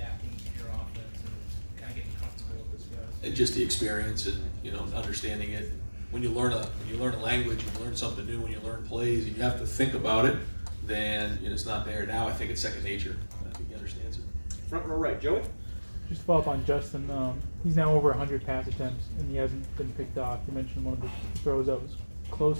to your offense and kind of getting comfortable with this guys? And just the experience and understanding it. When you learn a language, you learn something new. When you learn plays and you have to think about it, then it's not there. Now I think it's second nature. I think he understands it. Front row right, Joey. Just to follow up on Justin, he's now over 100 pass attempts and he hasn't been picked off. You mentioned one of the throws that was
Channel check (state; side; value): inverted; both; correlation -1.00